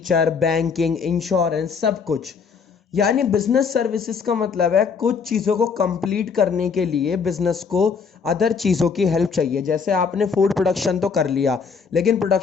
बैंकिंग, इंश्योरेंस, सब कुछ। यानी बिजनेस सर्विसेज का मतलब है कुछ चीज़ों को कंप्लीट करने के लिए बिजनेस को अदर चीज़ों की हेल्प चाहिए। जैसे आपने फूड प्रोडक्शन तो कर लिया, लेकिन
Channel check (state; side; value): quieter; right; 5.7 dB